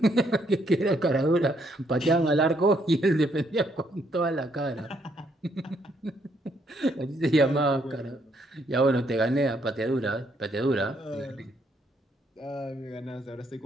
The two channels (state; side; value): normal; both; correlation 0.72